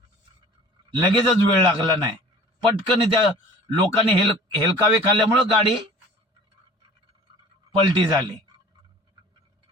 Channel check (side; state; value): both; normal; correlation 0.45